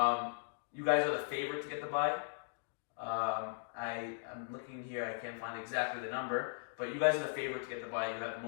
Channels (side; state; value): right; silent; digital silence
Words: You guys are the favorite to get the bye. I'm looking here, I can't find exactly the number, but you guys are the favorite to get the bye. You have the